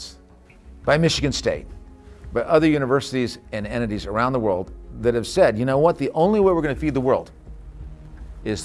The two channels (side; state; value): both; identical; correlation 1.00